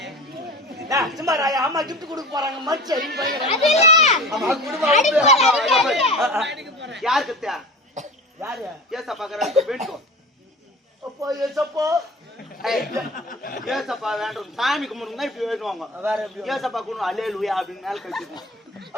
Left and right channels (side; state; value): both; normal; correlation 0.35